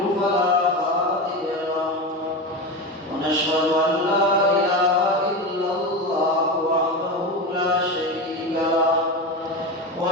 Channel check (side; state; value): both; normal; correlation 0.21